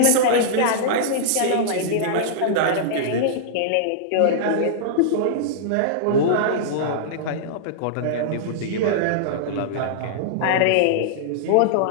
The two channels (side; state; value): both; different; correlation -0.02